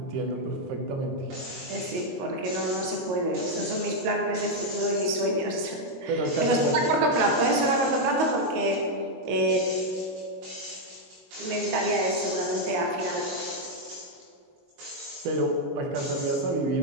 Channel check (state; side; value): late; left; 22 ms